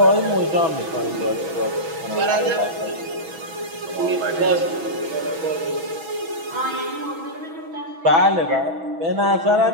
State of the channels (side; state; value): left; late; 6.1 ms